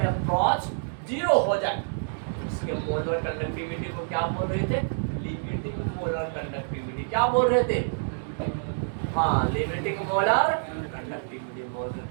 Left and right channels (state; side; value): silent; left; digital silence